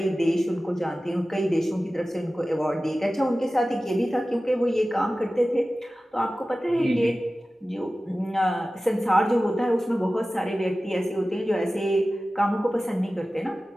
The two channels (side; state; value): both; normal; correlation 0.96